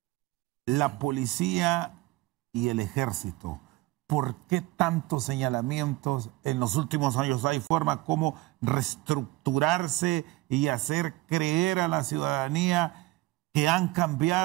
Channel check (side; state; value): left; quieter; 19.8 dB